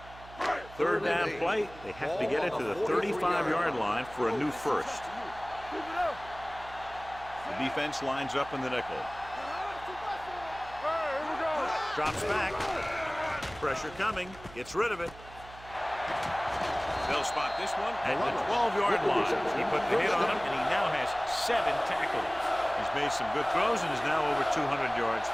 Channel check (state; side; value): noise; right; hum, 18 dB below the sound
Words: Third down play. They have to get it to the 35-yard line for a new first. The defense lines up in the nickel. Drops back. Pressure coming. Gets rid of it. They'll spot this one at the 12-yard line. He put the hit on him, and he now has 7 tackles. He's made some good throws and is now over 200 yards